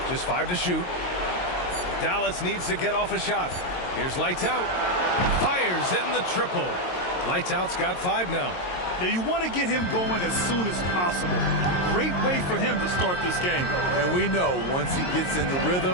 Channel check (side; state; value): right; late; 22 ms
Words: Just 5 to shoot. Dallas needs to get off a shot. Here's lights out. Fires in the triple. Lights out's got 5 now. Now you want to get him going as soon as possible. Great way for him to start this game. And we know once he gets in the